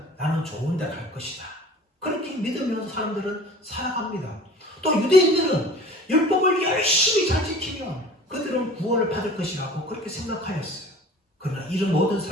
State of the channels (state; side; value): normal; both; correlation 0.44